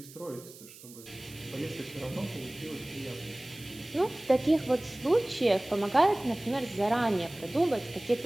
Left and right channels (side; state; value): right; noise; hiss, 18 dB below the sound